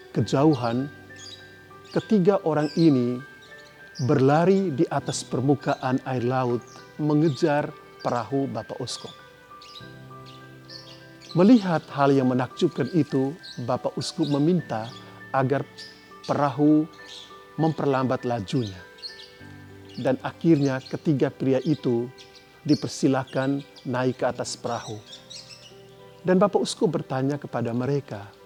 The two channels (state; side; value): identical; both; correlation 1.00